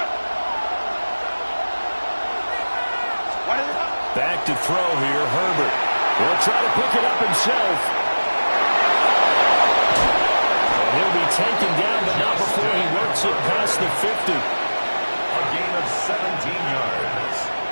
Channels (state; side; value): inverted; both; correlation -1.00